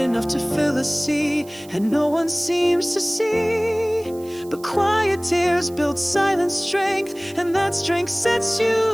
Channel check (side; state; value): right; noise; hiss, 22 dB below the sound